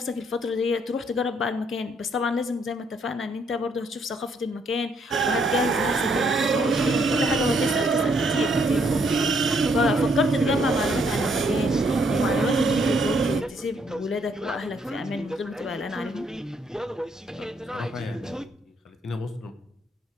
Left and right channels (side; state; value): both; normal; correlation 0.70